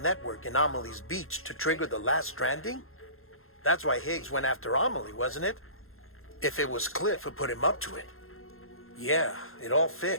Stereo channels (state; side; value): late; right; 0.61 ms